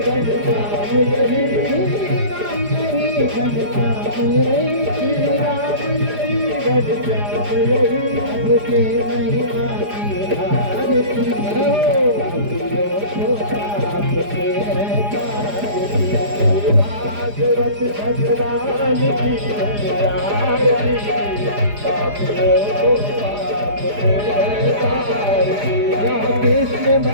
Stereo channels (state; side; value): late; left; 4.9 ms